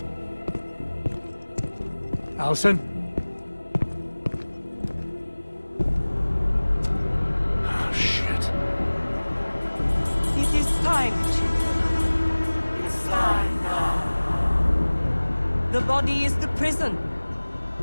Allison? Oh, shit. It is time, children. It's time now. The body is the prison.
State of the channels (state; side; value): inverted; both; correlation -1.00